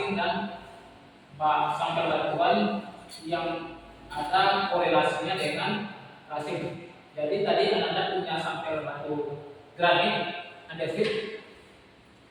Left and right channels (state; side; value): identical; both; correlation 1.00